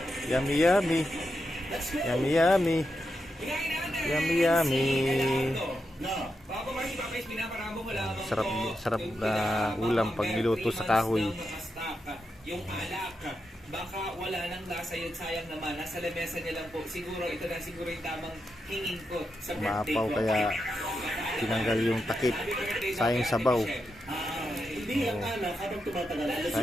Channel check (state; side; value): normal; both; correlation 0.86